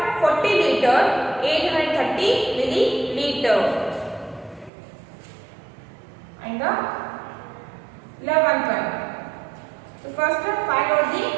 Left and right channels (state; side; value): drops out; left; at 4.7 s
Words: 40 liter 830 milliliter. And the 11th one. So first find out the